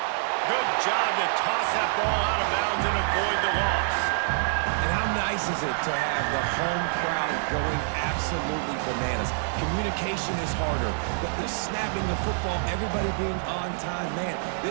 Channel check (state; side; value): silent; left; digital silence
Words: Good job to toss that ball out of bounds and avoid the loss. And how nice is it to have the home crowd going absolutely bananas? Communication is harder. The snapping the football, everybody being on time. Man,